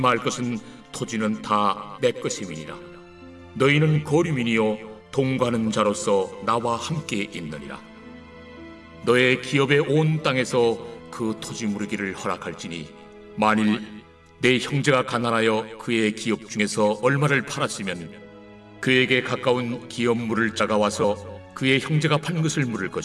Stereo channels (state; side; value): identical; both; correlation 1.00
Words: 것은 토지는 다 내 것임이니라. 너희는 거류민이요 동거하는 자로서 나와 함께 있느니라. 너의 기업의 온 땅에서 그 토지 무르기를 허락할지니 만일 내 형제가 가난하여 그의 기업 중에서 얼마를 팔았으면 그에게 가까운 기업 물을 자가 와서 그의 형제가 판 것을 물을